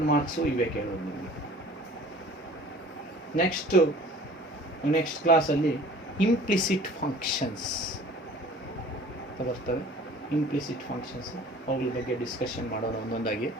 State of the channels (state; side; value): normal; both; correlation 0.48